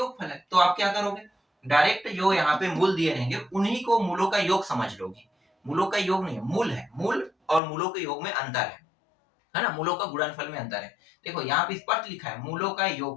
है, तो आप क्या करोगे, डायरेक्ट जो यहाँ पे मूल दिए रहेंगे उन्हीं को मूलों का योग समझ लोगे। मूलों का योग नहीं है, मूल है, मूल और मूलों के योग में अंतर है ना, मूलों का गुणनफल में अंतर है। देखो यहाँ पे स्पष्ट लिखा है मूलों का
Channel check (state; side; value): drops out; right; at 7.6 s